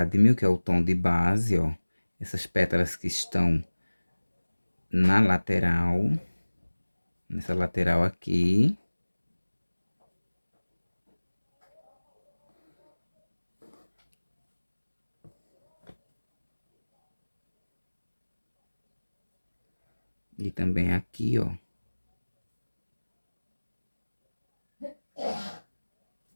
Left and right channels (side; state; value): both; inverted; correlation -1.00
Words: que é o tom de base, ó. Essas pétalas que estão na lateral, nessa lateral aqui. E também aqui, ó.